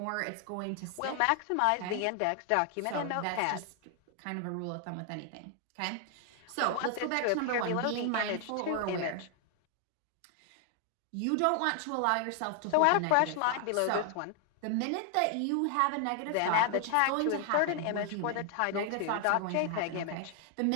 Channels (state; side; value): different; both; correlation 0.00